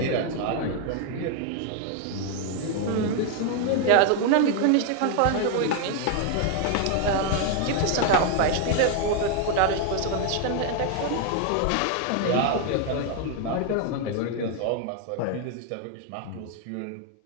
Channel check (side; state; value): both; different; correlation 0.00